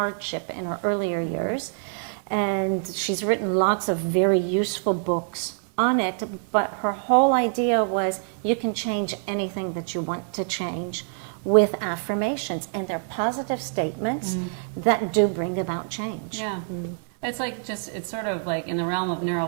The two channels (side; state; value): left; silent; digital silence